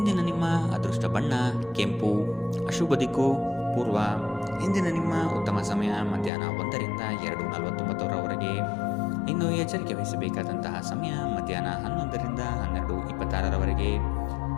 ನಿಮ್ಮ ಅದೃಷ್ಟ ಬಣ್ಣ ಕೆಂಪು. ಅಶುಭ ದಿಕ್ಕು ಪೂರ್ವ. ಇಂದಿನ ನಿಮ್ಮ ಉತ್ತಮ ಸಮಯ ಮಧ್ಯಾಹ್ನ 1ರಿಂದ 2:49ರವರೆಗೆ. ಇನ್ನು ಎಚ್ಚರಿಕೆ ವಹಿಸಬೇಕಾದಂತಹ ಸಮಯ ಮಧ್ಯಾಹ್ನ 11ರಿಂದ 12:26ರವರೆಗೆ.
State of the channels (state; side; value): drops out; right; at 6.3 s